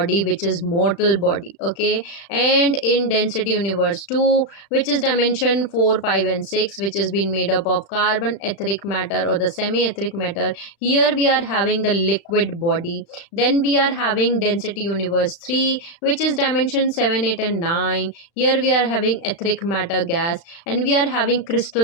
which is mortal body. Okay, and in density universe 2, which is dimension 4, 5, and 6, which is being been made up of carbon, etheric matter, or the semi etheric matter. Here we are having the liquid body. Then we are having density universe 3, which is dimension 7, 8, and 9. Here we are having etheric matter gas, and we are having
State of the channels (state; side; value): late; right; 35 ms